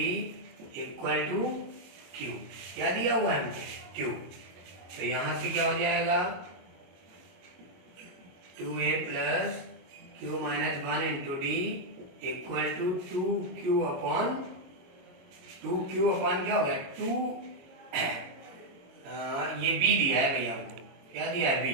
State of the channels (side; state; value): left; late; 22 ms